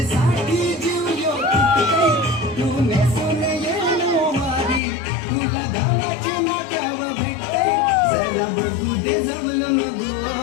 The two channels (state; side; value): drops out; right; at 4.8 s